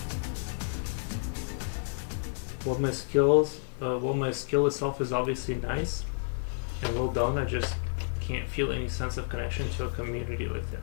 Well, my skill itself is obviously nice and well done. I just can't feel any sense of connection to a community like that.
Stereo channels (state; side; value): silent; right; digital silence